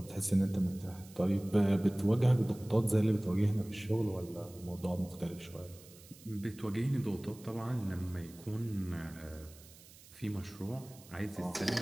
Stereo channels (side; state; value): right; noise; hiss, 21 dB below the sound